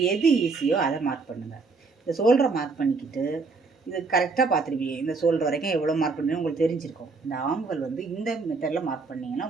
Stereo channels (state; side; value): quieter; left; 4.2 dB